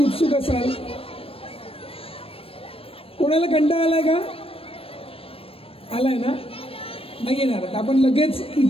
उत्सुक असाल. कोणाला कंटाळा आलाय का? आलाय ना? नाही येणार. आपण लगेच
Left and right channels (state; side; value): late; right; 0.28 ms